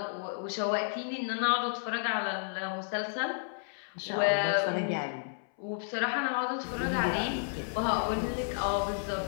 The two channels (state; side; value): silent; right; 57 dB below the other